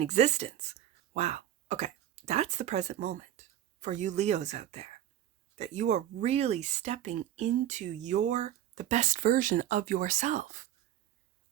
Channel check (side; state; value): left; quieter; 11.7 dB